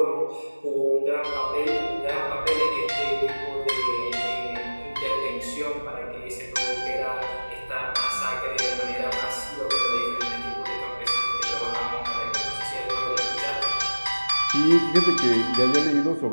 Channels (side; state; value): both; inverted; correlation -1.00